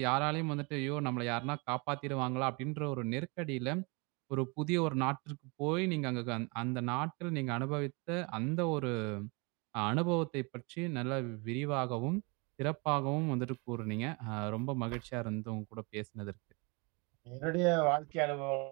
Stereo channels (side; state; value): left; quieter; 29.9 dB